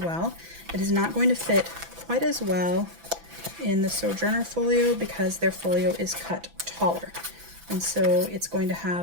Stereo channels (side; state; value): left; late; 6.0 ms